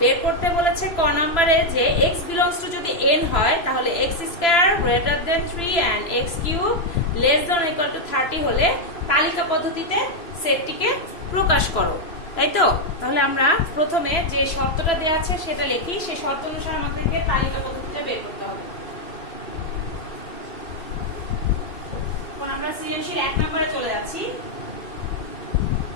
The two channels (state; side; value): late; right; 2.9 ms